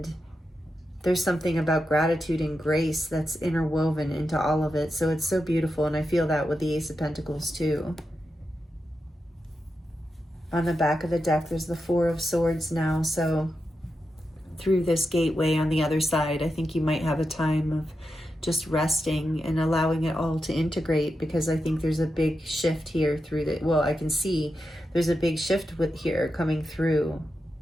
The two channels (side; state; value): both; normal; correlation 0.88